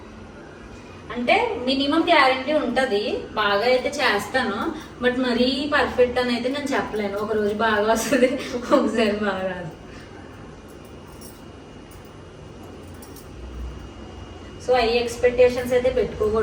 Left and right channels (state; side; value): identical; both; correlation 1.00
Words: అంటే మినిమం గ్యారంటీ ఉంటుంది, బాగా అయితే చేస్తాను, బట్ మరీ పర్ఫెక్ట్ అని అయితే నేను చెప్పలేను. ఒక రోజు బాగా వస్తుంది, ఒకసారి బాగా రాదు. సో ఐ ఎక్స్పెక్టేషన్స్ అయితే